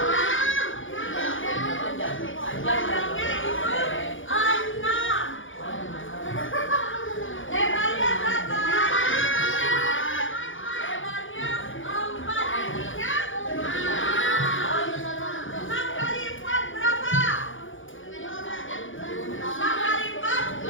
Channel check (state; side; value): late; right; 0.57 ms